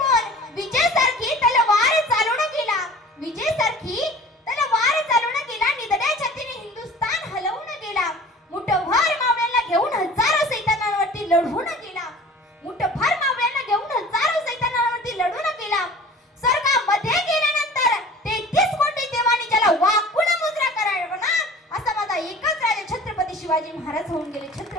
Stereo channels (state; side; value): normal; both; correlation 0.44